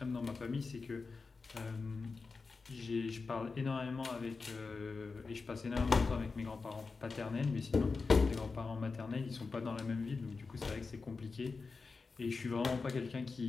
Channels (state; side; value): quieter; right; 4.3 dB